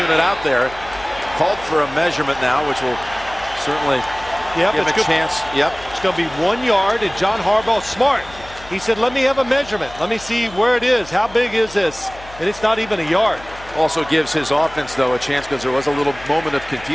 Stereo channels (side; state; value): left; noise; hum, 19 dB below the sound